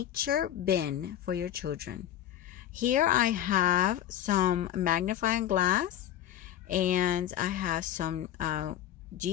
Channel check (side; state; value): right; quieter; 11.6 dB